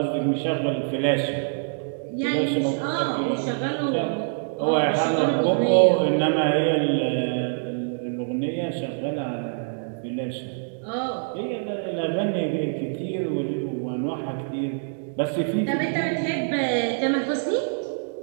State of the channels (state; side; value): silent; left; digital silence